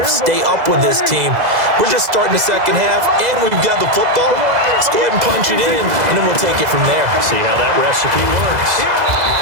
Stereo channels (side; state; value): left; late; 2.0 ms